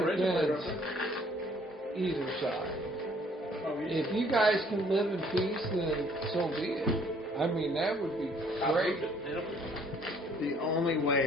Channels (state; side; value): normal; both; correlation 0.61